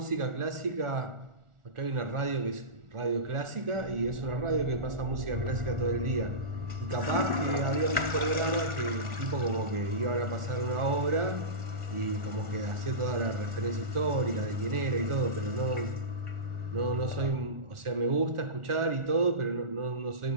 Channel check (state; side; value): late; left; 1.4 ms